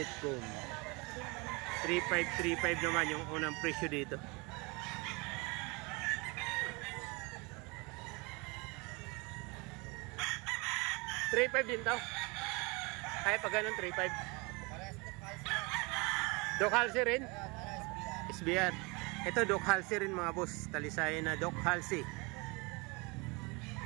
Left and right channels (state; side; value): quieter; left; 28.0 dB